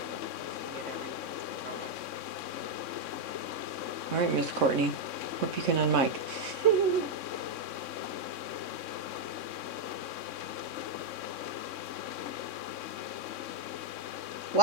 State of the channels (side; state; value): left; late; 3.6 ms